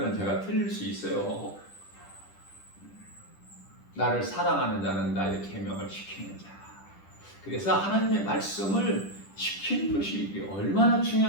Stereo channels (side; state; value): right; late; 10 ms